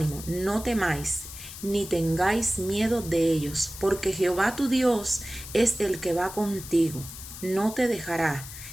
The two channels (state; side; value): noise; left; hiss, 12 dB below the sound